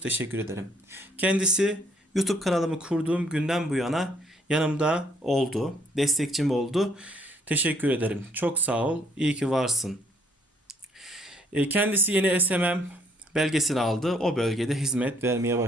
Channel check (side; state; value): both; normal; correlation 0.65